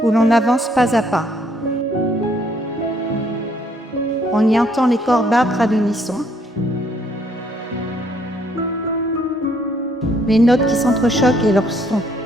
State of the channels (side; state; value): both; normal; correlation 0.67